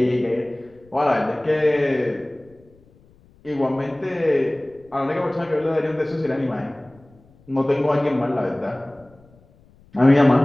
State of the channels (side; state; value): left; noise; rumble, 29 dB below the sound